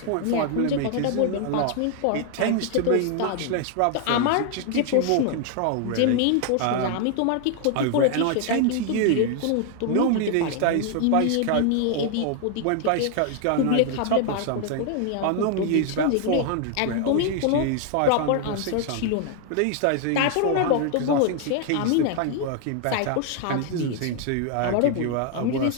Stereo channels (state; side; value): different; both; correlation 0.00